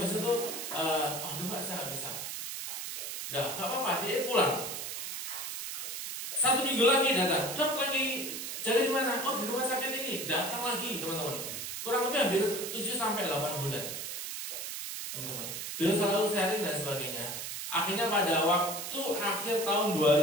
itu, aduh Pak, saya nggak bisa. Udah, nggak apa-apa, dia pulang. 1 minggu lagi datang. Dok, lagi jaga di mana? Oh, di rumah sakit ini. Datang lagi teman-teman. Kurang lebih hampir 7 sampai 8 bulan. Teman-teman. Beliau selalu sharing dan sebagainya. Akhirnya pada waktu akhir tahun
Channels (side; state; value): right; noise; hiss, 5 dB below the sound